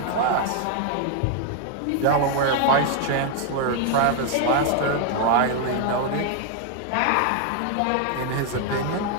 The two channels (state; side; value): different; both; correlation 0.00